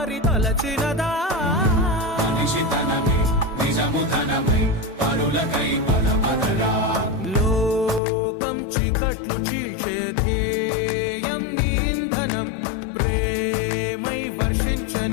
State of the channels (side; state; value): right; drops out; at 8.0 s